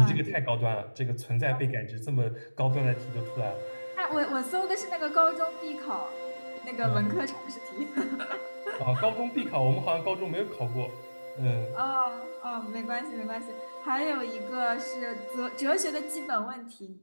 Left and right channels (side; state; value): both; inverted; correlation -1.00